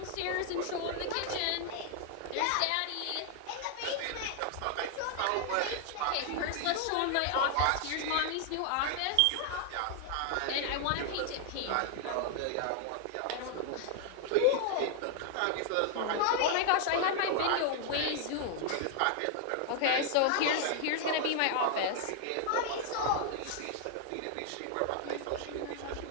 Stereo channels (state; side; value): different; both; correlation 0.00